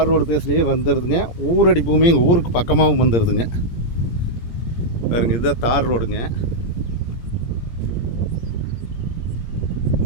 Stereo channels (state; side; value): late; right; 17 ms